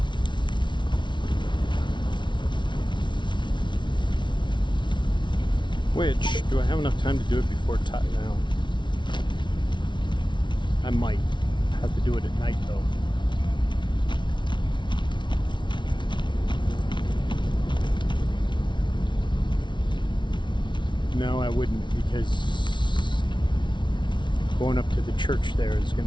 Which, do I have enough time to do it before now? I might have to do it at night, though. No, I wouldn't, because going up to the church there is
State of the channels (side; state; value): right; late; 0.23 ms